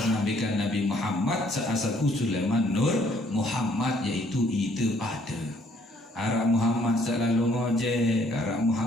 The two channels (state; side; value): normal; both; correlation 0.64